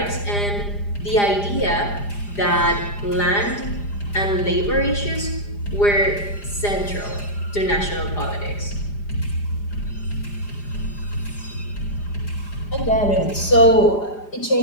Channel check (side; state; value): right; late; 4.9 ms